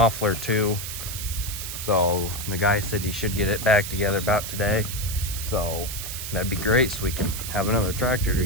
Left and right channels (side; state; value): right; noise; hiss, 6 dB below the sound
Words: too. So the guy said he should get it back together about today. So that'd be great, so we can have another tractor to